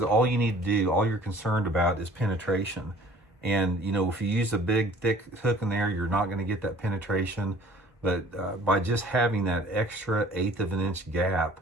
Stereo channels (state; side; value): normal; both; correlation 0.51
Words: all you need to do, all you're concerned about, is penetration. And if you use a big thick hook in there, you're not going to get that penetration. But by just having that extra 1/8 of an inch gap